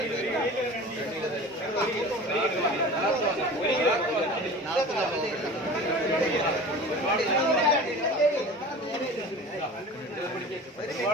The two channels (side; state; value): both; normal; correlation 0.38